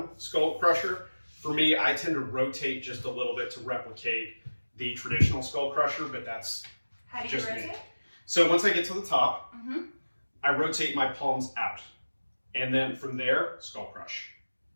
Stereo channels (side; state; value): both; inverted; correlation -1.00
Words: skull crusher. For me, I tend to rotate just a little bit to replicate the traditional skull crusher, but that's How do you just rotate? me. So once I get to the top, Mm-hmm. I rotate my palms out, and then from there, skull crush,